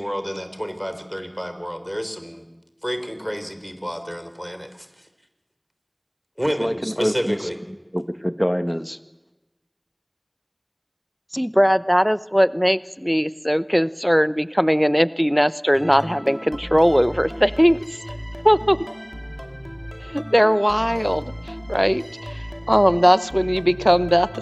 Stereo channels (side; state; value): both; identical; correlation 1.00